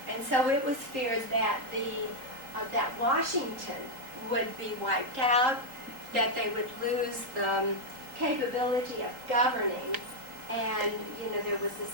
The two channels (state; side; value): late; left; 3.8 ms